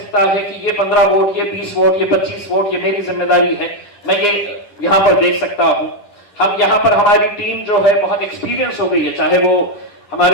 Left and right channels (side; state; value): right; late; 9.7 ms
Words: है कि ये 15 वोट, ये 20 वोट, ये 25 वोट, ये मेरी जिम्मेदारी है, मैं ये यहाँ पर देख सकता हूँ। हम यहाँ पर, हमारी टीम जो है बहुत एक्सपीरियंस हो गई है, चाहे वो